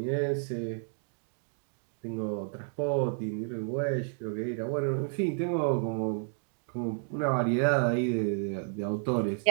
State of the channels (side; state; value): left; silent; 57 dB below the other